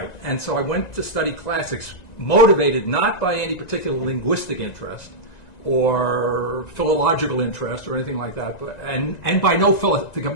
And so I went to study classics, motivated not by any particular linguistic interest or philological interest or anything like that, but and by no to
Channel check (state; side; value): late; right; 1.9 ms